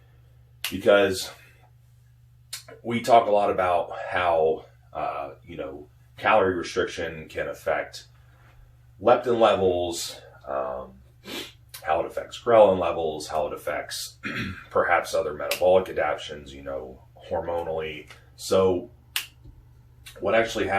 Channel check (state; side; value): identical; both; correlation 1.00